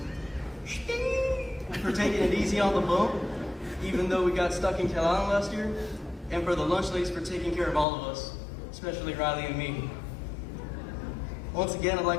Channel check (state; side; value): drops out; right; at 7.9 s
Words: For taking it easy on the bump, even though we got stuck in Carolina last year. And for the lunch ladies for taking care of all of us, especially Riley and me. Once again, I'd